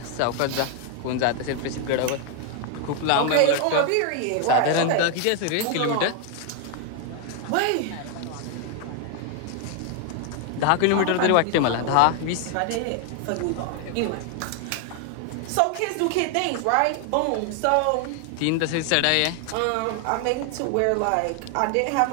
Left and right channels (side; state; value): both; different; correlation 0.00